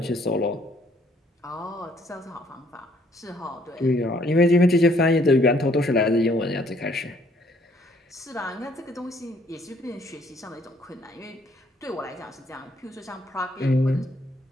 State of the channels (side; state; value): both; normal; correlation 0.65